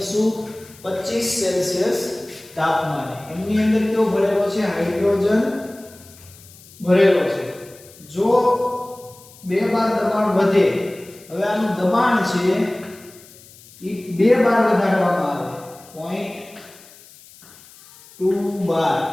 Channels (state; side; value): noise; left; hiss, 23 dB below the sound